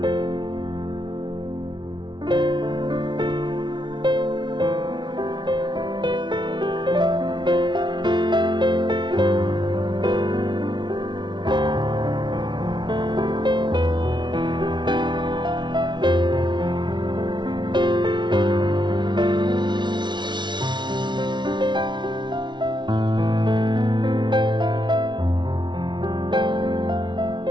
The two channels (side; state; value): left; late; 0.23 ms